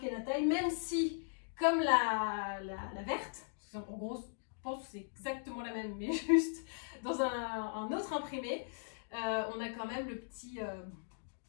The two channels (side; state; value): right; silent; digital silence